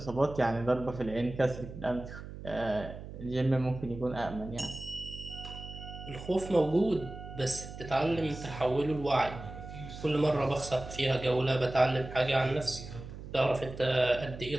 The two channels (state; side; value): noise; right; hum, 12 dB below the sound